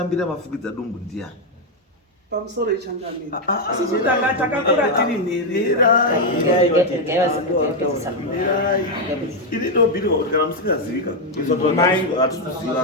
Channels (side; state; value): both; normal; correlation 0.02